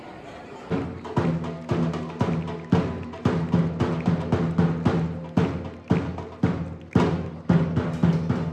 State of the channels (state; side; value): identical; both; correlation 1.00